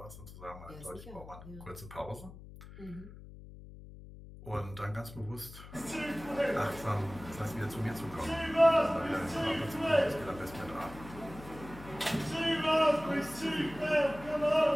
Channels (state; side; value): noise; left; hum, 16 dB below the sound